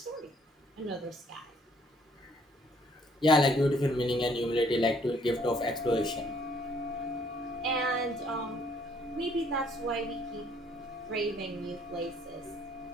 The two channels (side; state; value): both; normal; correlation 0.64